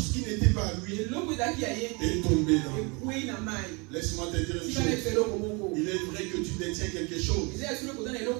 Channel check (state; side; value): quieter; left; 29.9 dB